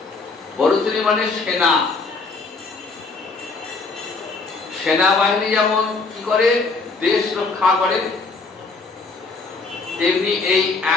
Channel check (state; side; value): quieter; right; 4.0 dB